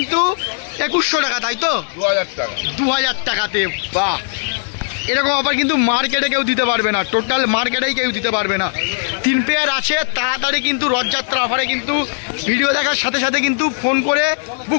2100 টাকা, তাই তো? 2000 টাকা। 2000 টাকাতে। বাহ, এরকম অফার কিন্তু মার্কেটে কেউ দিতে পারবে না, টোটাল মার্কেটেই কেউ দিতে পারবে না। 3 পেয়ার আছে, তাড়াতাড়ি কিন্তু রথযাত্রা অফারে কিন্তু ভিডিও দেখার সাথে সাথে কিন্তু ফোন করে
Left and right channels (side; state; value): right; silent; 67 dB below the other